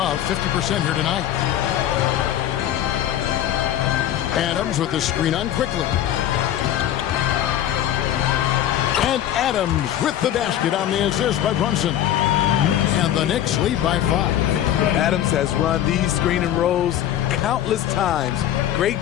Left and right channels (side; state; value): right; quieter; 11.6 dB